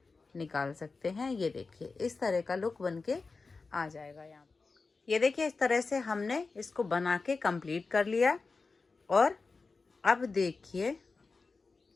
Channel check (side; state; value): right; quieter; 4.2 dB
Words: निकाल सकते हैं। ये देखिए इस तरह का लुक बन के आ जाएगा। यहाँ ये देखिए इस तरह से हमने इसको बना के कंप्लीट कर लिया। और अब देखिए